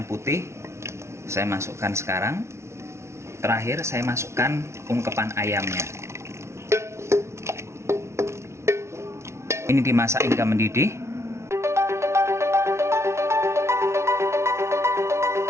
putih saya masukkan sekarang. Terakhir saya masukkan ungkepan ayamnya. Ini dimasak hingga mendidih.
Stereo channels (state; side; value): late; left; 0.13 ms